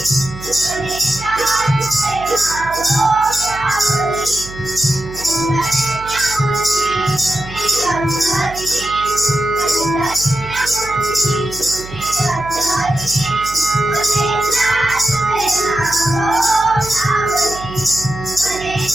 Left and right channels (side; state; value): right; noise; hum, 14 dB below the sound